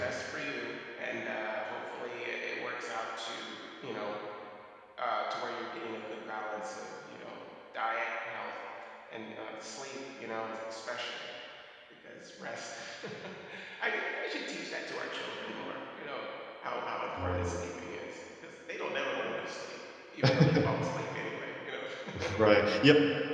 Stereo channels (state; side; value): identical; both; correlation 1.00